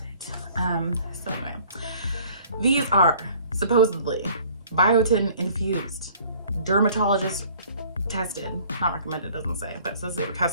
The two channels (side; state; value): both; inverted; correlation -0.54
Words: did. So anyway, these are supposedly biotin infused, dermatologist tested, not recommended, doesn't say, but it says they were